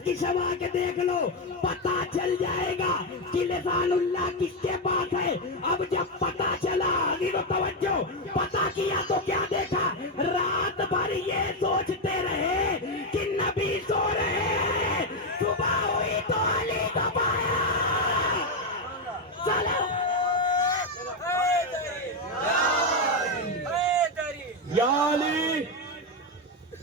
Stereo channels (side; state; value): both; normal; correlation 0.06